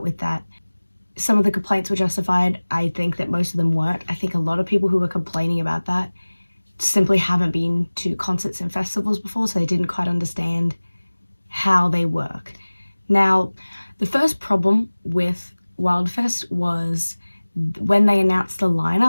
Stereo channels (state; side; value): inverted; both; correlation -1.00